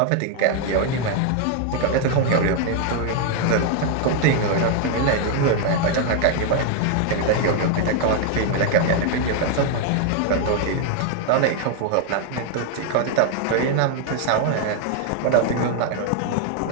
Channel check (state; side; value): different; both; correlation 0.00